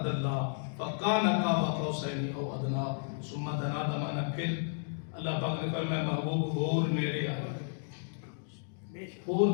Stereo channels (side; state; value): right; silent; digital silence